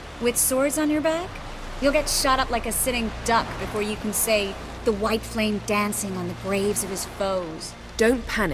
With swords on your back? You'll get shot up like a sitting duck before you can say the white flame dancing on the graves of his foes. Don't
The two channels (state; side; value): identical; both; correlation 1.00